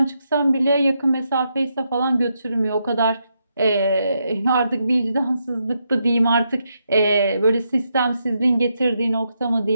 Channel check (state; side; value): inverted; both; correlation -0.81